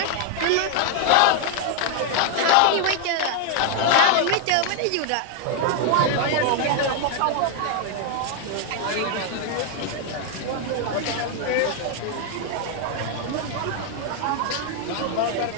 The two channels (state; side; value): different; both; correlation 0.00